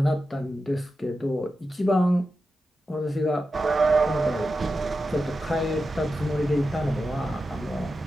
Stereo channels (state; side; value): normal; both; correlation 0.91